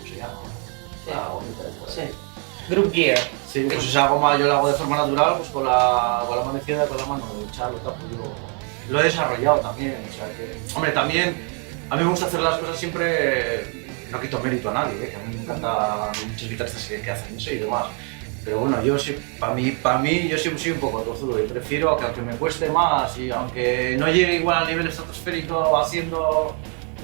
se llama, la gomita esta. Sí. Group Gear. Sí, pues esa goma yo la hago de forma natural, pues con la mano izquierda y con la mano derecha, lo tapo yo. Lo he desarrollado también, o sea que... Hombre, también a mí me gusta hacer las cosas siempre, no quito mérito a nadie, que a mí me encanta muchos guitarristas que hacen eso y demás. Pero bueno, yo sí, para mí yo siempre soy un poco tozudo y prefiero que aunque me cueste más y aunque no llegue igual al nivel estratosférico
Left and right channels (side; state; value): left; quieter; 38.8 dB